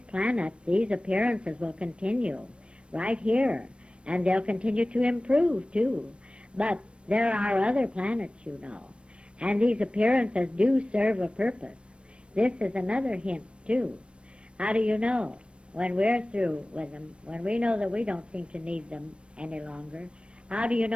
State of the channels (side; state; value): left; late; 0.059 ms